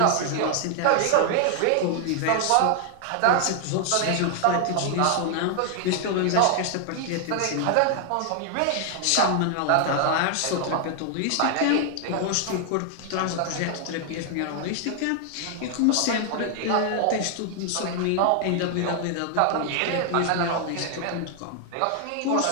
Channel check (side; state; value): both; different; correlation 0.00